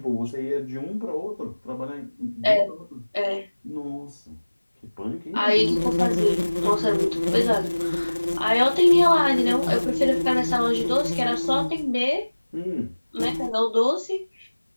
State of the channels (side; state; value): both; inverted; correlation -1.00